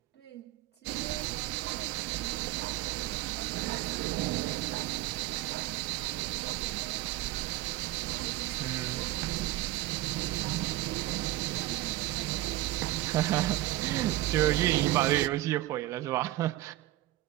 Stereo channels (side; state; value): left; quieter; 16.3 dB